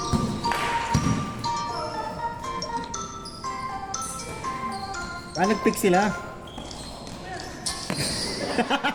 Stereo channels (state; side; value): identical; both; correlation 1.00